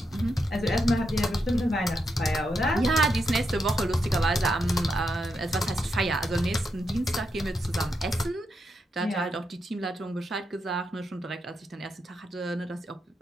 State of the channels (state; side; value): normal; both; correlation 0.83